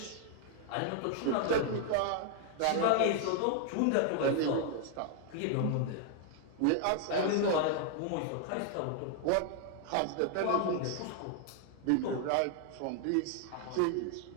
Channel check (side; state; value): both; different; correlation 0.00